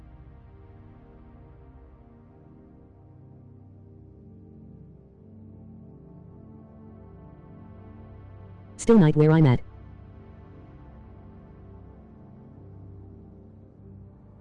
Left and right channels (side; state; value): both; identical; correlation 1.00